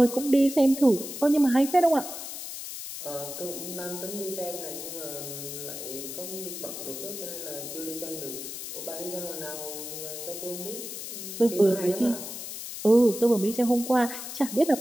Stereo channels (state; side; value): noise; left; hiss, 8 dB below the sound